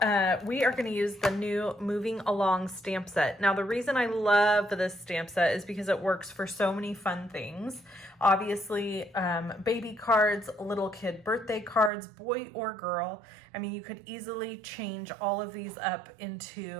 we are going to use the new Moving Along stamp set. Now, the reason I love this stamp set is because it works for so many fun things. Obviously, baby cards, little kid birthday cards, boy or girl. I mean, you could easily change all of these up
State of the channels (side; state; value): left; drops out; at 11.9 s